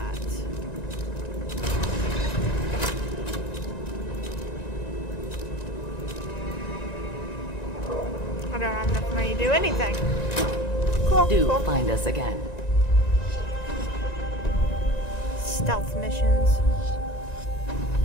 I don't have enough money to do anything. Cool. Do find us again. Stealth missions.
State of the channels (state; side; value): late; right; 1.9 ms